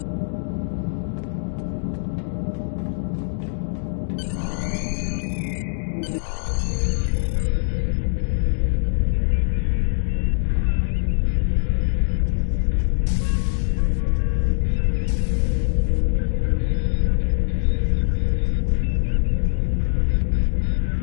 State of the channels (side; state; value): right; silent; digital silence